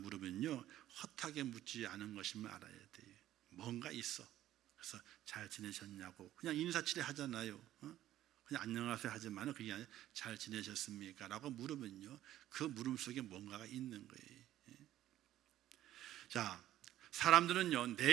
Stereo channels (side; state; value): left; quieter; 13.2 dB